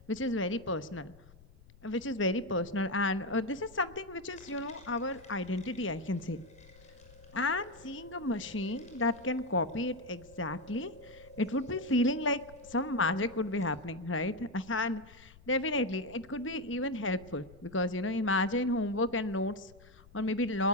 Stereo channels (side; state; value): left; noise; rumble, 23 dB below the sound